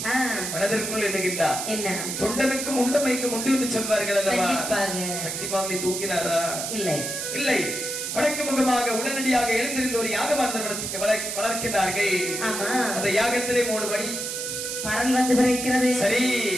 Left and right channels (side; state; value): right; noise; hiss, 4 dB below the sound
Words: மனதிற்குள் எண்ணுகின்றார். என்ன? தொண்டனுக்கும் உண்டமைக்கும் உண்டு என்று சொல்வார்கள் அல்லவா? சக்தி மாமுனி தூங்கினாரா? இல்லை, இல்லை. வடக்கு முகமாக உடனடியாக எழுந்திருந்த ஒரு யாகமாந்தனத்துக்கு வளர்க்கிறார்கள். அந்த யாகத்திலே 3 படி பரல் வந்து பிறக்கிறது. சரி,